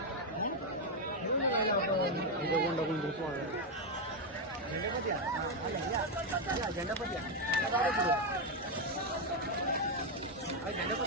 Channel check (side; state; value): both; normal; correlation 0.04